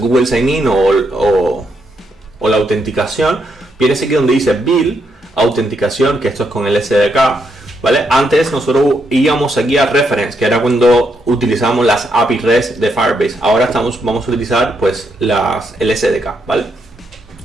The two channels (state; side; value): normal; both; correlation 0.79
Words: Sign In o la autenticación, vienes aquí donde dice Build, autenticación, que esto es con el SDK, ¿vale? Antes nosotros íbamos aquí a Reference, que era cuando utilizábamos las API REST de Firebase. Ahora vamos a utilizar pues el SDK, ¿vale?